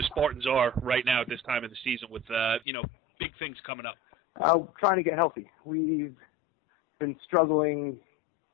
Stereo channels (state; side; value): drops out; right; at 2.6 s